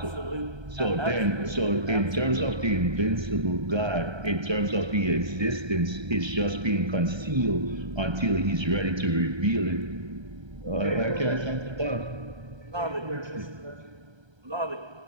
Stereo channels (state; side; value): late; left; 1.3 ms